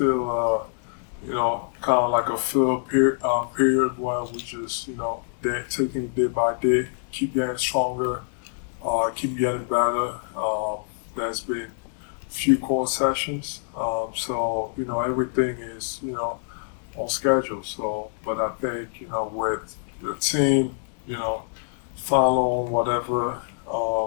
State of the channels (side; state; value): right; silent; 61 dB below the other